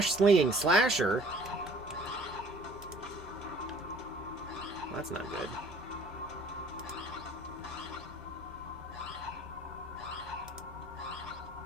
Slasher? Well, that's not good.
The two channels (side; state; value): both; normal; correlation 0.53